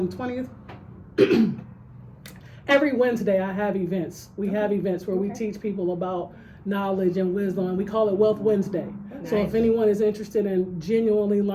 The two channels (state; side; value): identical; both; correlation 1.00